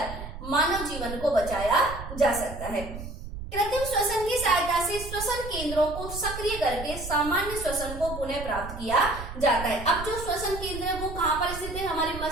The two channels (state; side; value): noise; right; rumble, 10 dB below the sound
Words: मानव जीवन को बचाया जा सकता है। कृत्रिम श्वसन की सहायता से श्वसन केंद्रों को सक्रिय करके सामान्य श्वसन को पुनः प्राप्त किया जाता है। अब जो श्वसन केंद्र है वो कहाँ पर स्थित है, हमारे